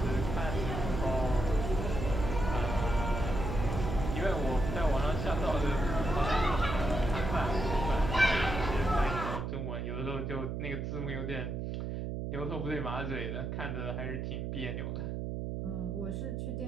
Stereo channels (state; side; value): noise; right; hum, 3 dB below the sound